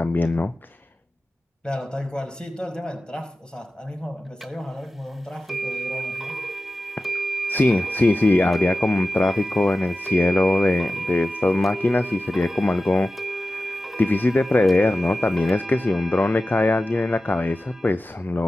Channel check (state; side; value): normal; both; correlation 0.94